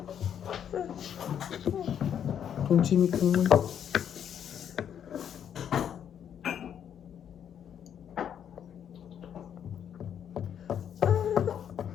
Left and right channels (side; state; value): right; quieter; 8.9 dB